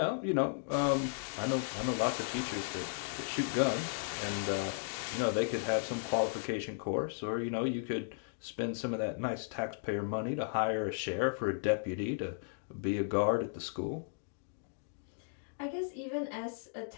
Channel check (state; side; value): silent; right; digital silence